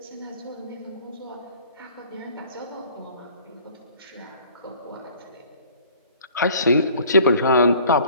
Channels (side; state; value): both; inverted; correlation -0.52